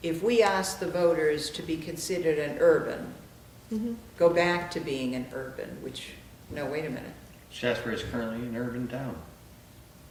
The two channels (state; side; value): identical; both; correlation 1.00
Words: if we asked the voters to be considered an urban, go back to being an urban, which, no, wait a minute. Shaftsbury is currently an urban town.